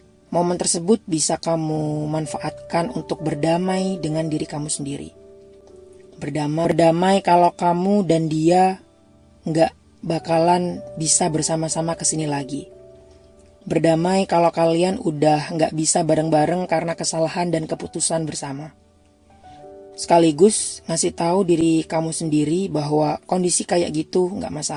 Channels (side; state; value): both; identical; correlation 1.00